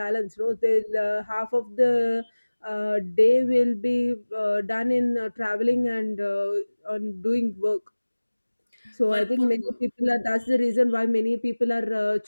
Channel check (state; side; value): inverted; both; correlation -1.00